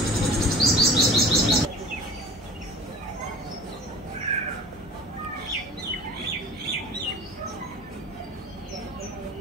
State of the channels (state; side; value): normal; both; correlation 0.40